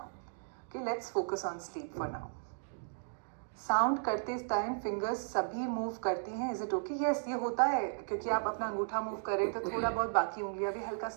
Okay, let's focus on sleep for now. Sound करते time fingers सभी move करती हैं. Is it okay? Yes, ये होता है क्योंकि आप अपना अंगूठा मूव करें तो थोड़ा बहुत बाकी उंगलियां भी हल्का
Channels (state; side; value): silent; left; digital silence